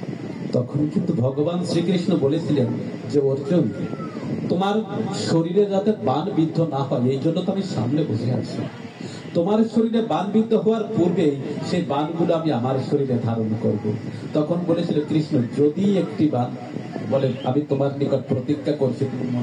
তখন কিন্তু ভগবান শ্রীকৃষ্ণ বলেছিলেন যে অর্জুন, তোমার শরীরে যাতে বাণ বিদ্ধ না হয় এই জন্য তো আমি সামনে বসে আছি। তোমার শরীরে বাণ বিদ্ধ হওয়ার পূর্বে সেই বাণগুলো আমি আমার শরীরে ধারণ করব। তখন বলেছিল কৃষ্ণ, যদি একটি বাণ বলে, আমি তোমার নিকট প্রতিজ্ঞা করছি, তুমি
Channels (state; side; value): identical; both; correlation 1.00